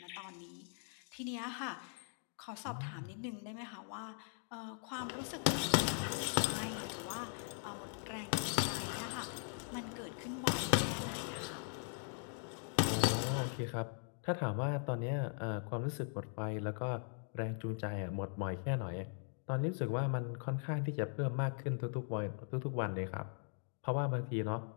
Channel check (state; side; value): silent; right; 51 dB below the other